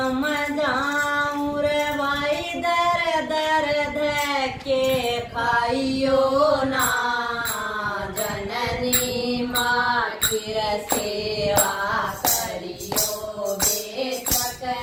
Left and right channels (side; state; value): both; identical; correlation 1.00